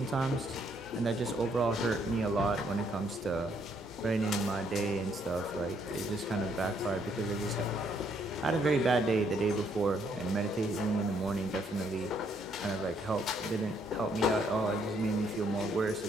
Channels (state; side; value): normal; both; correlation 0.70